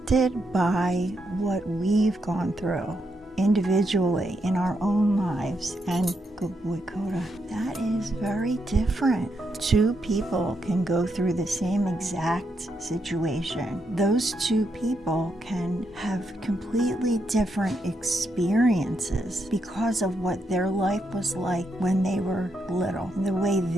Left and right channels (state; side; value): normal; both; correlation 0.81